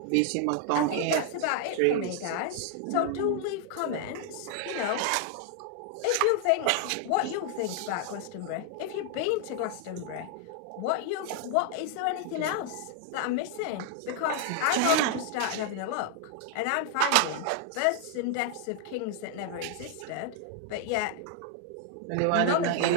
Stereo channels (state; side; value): different; both; correlation 0.00